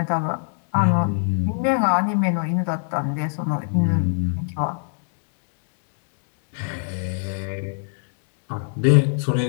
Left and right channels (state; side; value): silent; right; digital silence